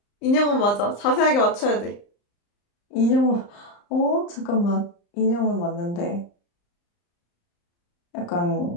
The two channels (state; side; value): late; right; 35 ms